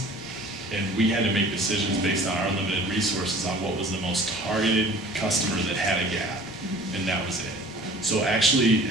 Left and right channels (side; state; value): both; normal; correlation 0.47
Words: and we had to make decisions based on our limited resources on what was the most targeted customer that had a gap, and that was it. So actually,